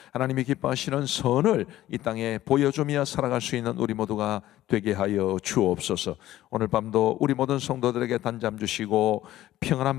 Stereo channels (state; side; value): quieter; right; 14.4 dB